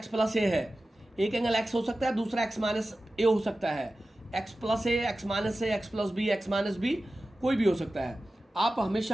प्लस ए है, एक एंगल x हो सकता है, दूसरा x माइनस ए हो सकता है, x plus a, x minus a, x plus b, x minus b, कोई भी हो सकता है। आप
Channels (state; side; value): normal; both; correlation 0.95